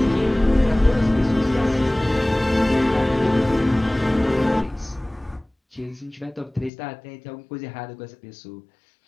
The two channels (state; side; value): drops out; right; at 6.7 s